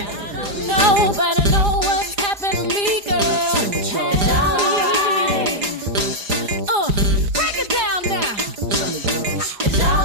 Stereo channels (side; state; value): left; late; 4.9 ms